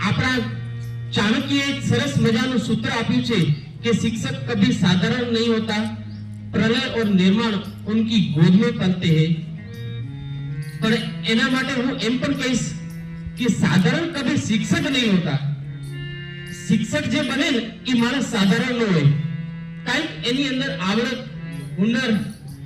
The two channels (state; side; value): identical; both; correlation 1.00